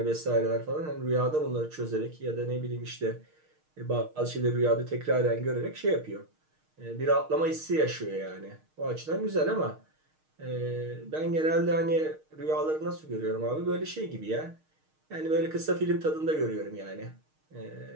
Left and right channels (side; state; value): left; late; 6.5 ms